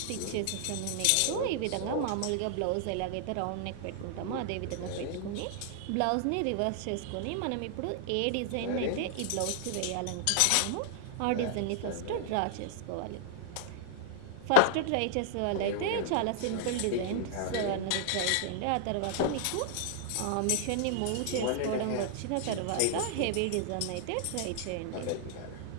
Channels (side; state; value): both; different; correlation -0.01